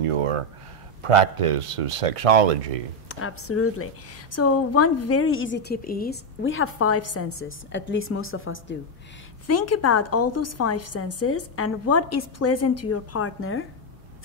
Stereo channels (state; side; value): normal; both; correlation 0.04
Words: your practice of sexology. Absolutely. So one very easy tip is we have 5 senses, at least most of us do. Think about all those 5 senses and what is pleasant to your partner